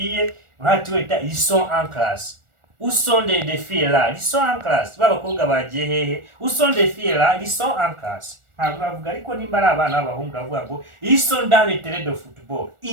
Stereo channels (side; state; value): left; late; 1.4 ms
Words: ils sont en classe. Où sont des filles là? Ils sont en classe. Babakobwa bagiye hehe? Où sont des filles là? Ils sont en classe. Ntabwo bavuga ariko nimba ari abana b'abahungu bavuga ngo ils sont dans le terrain de football.